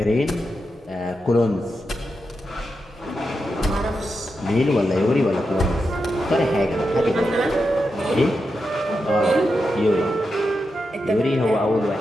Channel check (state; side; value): normal; both; correlation 0.87